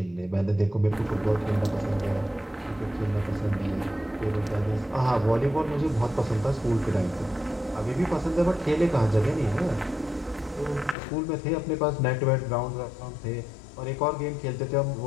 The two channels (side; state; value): right; drops out; at 11.0 s